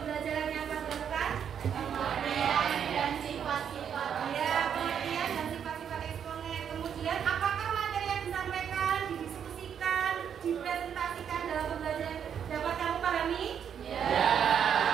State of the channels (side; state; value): left; quieter; 8.2 dB